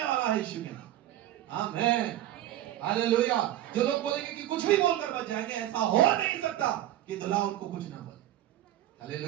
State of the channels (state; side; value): quieter; left; 13.3 dB